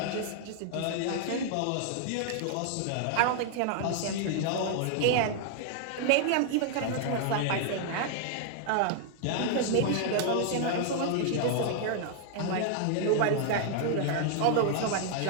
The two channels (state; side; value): different; both; correlation 0.00